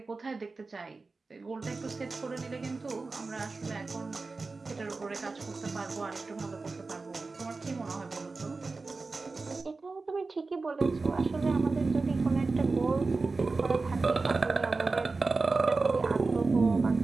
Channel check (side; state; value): left; quieter; 3.9 dB